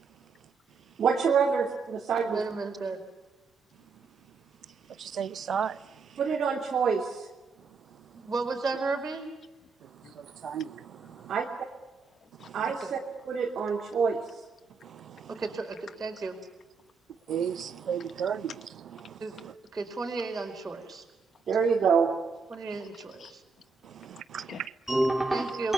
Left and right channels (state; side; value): quieter; left; 4.9 dB